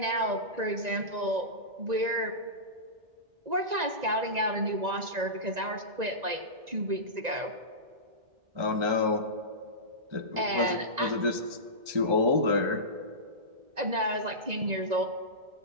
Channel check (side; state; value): left; late; 1.9 ms